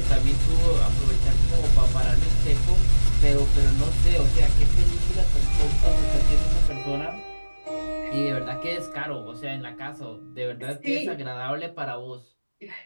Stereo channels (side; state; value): both; inverted; correlation -1.00